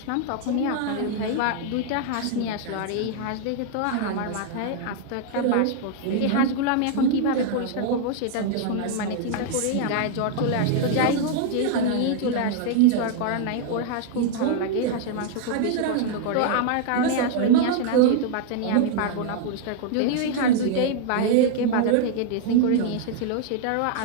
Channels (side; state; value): both; different; correlation 0.00